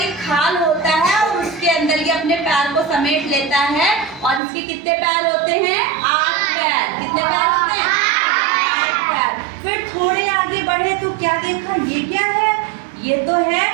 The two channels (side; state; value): left; drops out; at 4.4 s